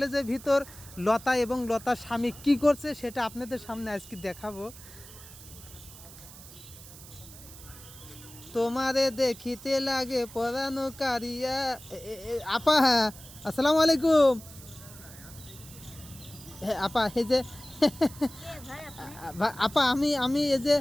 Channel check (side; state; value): right; noise; hiss, 17 dB below the sound